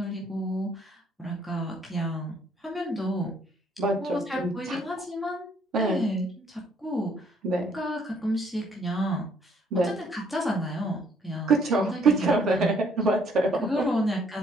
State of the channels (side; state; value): both; normal; correlation 0.64